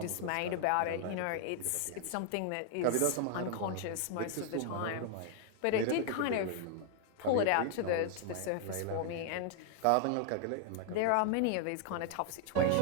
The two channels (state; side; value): different; both; correlation 0.00